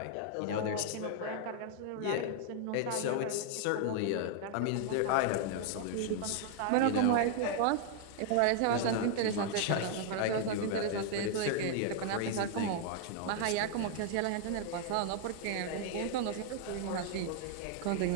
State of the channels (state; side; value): different; both; correlation 0.00